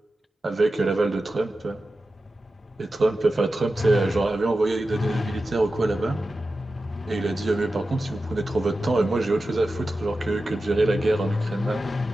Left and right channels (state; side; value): normal; both; correlation 0.93